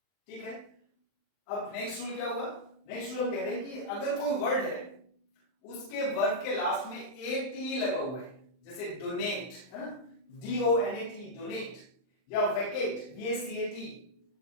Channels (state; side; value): late; right; 39 ms